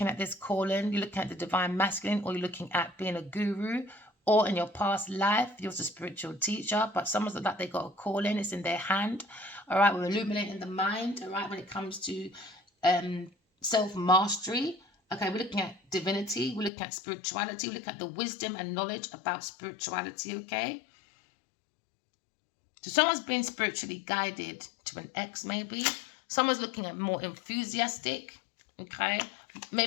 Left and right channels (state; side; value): drops out; right; at 16.7 s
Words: at this calling, you're looking at the divine masculine, or you're looking at being a guru, or in your past life, you're a spiritual teacher, but someone's like they got a calling, it's in their hand, all right? We're illuminating the mind, all right, when it comes to self-mastery. Okay, we're looking at divinity, we're looking at spirituality, we're looking at the wisdom and knowledge about spirituality, okay? So someone's being spiritually guided to an ex, maybe. Someone's looking at more enthusiastic, okay?